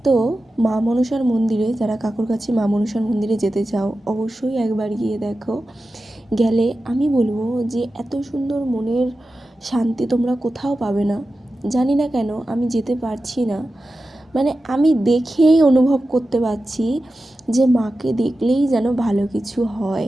তো মা মনসার মন্দিরে, যারা কাকুরগাছি মা মনসার মন্দিরে যেতে চাও অবশ্যই একবার গিয়ে দেখো। গেলে আমি বলবো যে এত সুন্দর মনের শান্তি তোমরা কোথাও পাবে না। জানি না কেন আমি যেতে পারছি না, মানে আমি দেখেই অনুভব করতে পারছি যে মাকে দেখলেই যেন ভালো কিছু হয়।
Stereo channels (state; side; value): normal; both; correlation 0.93